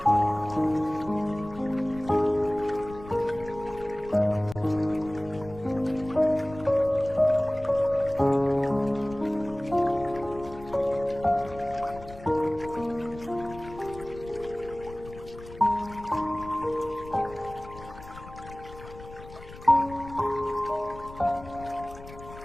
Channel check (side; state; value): left; noise; rumble, 16 dB below the sound